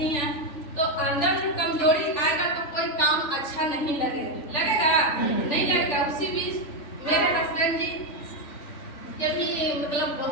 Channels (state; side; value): late; right; 3.4 ms